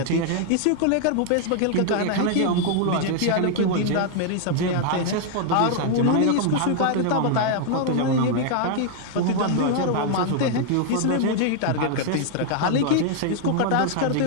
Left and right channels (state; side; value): different; both; correlation 0.00